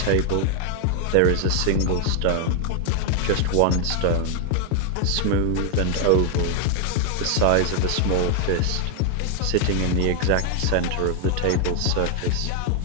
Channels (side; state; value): both; different; correlation 0.01